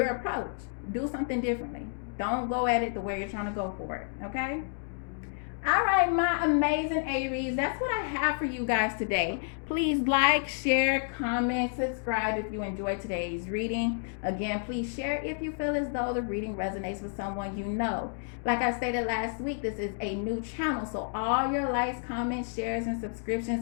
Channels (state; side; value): silent; right; 58 dB below the other